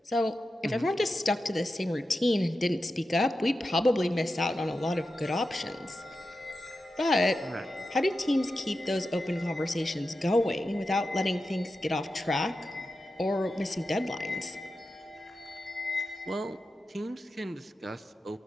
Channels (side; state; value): both; normal; correlation 0.91